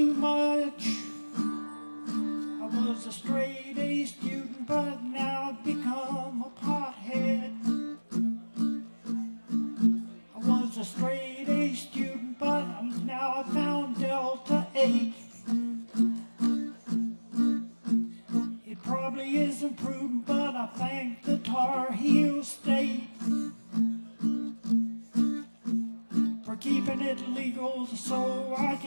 much. I was a straight A student, but now I've become a pothead. I was a straight A student, but now I found Delta 8. It probably isn't prudent, but I thank the Tar Heel State for keeping it legal so I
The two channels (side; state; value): both; inverted; correlation -1.00